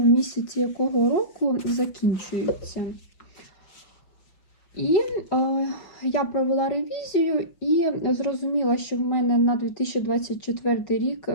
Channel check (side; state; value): right; late; 5.7 ms